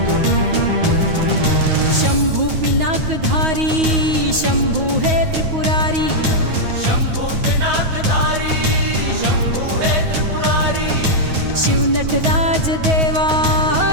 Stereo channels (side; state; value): left; late; 9.4 ms